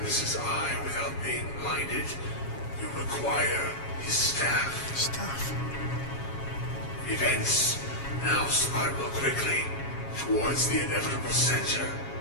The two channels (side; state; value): right; late; 7.3 ms